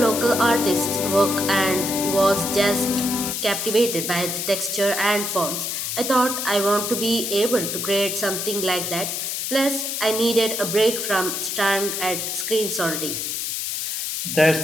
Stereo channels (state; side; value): noise; left; hiss, 3 dB below the sound